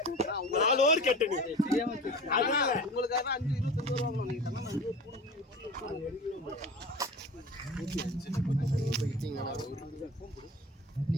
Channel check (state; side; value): normal; both; correlation 0.36